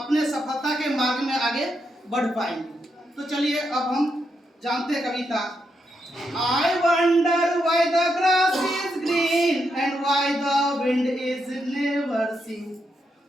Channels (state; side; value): normal; both; correlation 0.82